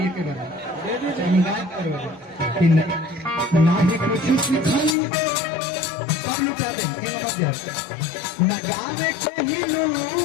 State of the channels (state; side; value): drops out; right; at 5.0 s